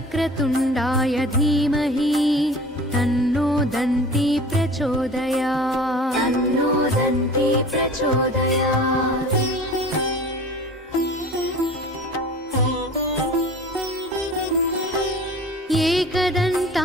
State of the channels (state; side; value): normal; both; correlation 0.42